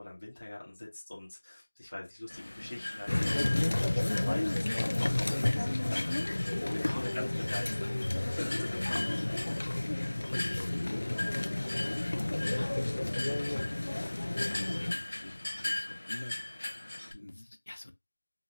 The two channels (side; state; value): both; inverted; correlation -1.00